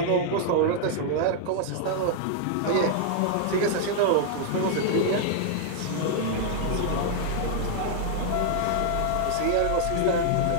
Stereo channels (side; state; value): both; different; correlation -0.01